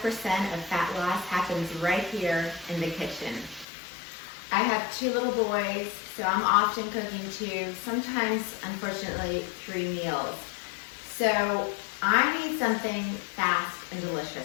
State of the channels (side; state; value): right; drops out; at 3.7 s